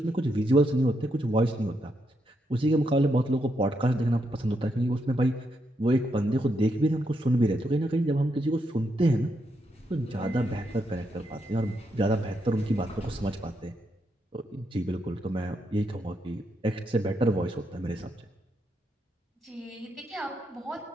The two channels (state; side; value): normal; both; correlation 0.80